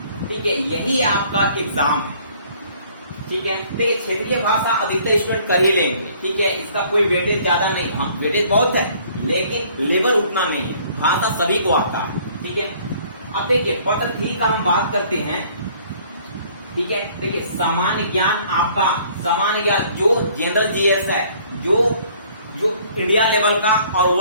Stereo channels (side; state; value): both; inverted; correlation -0.58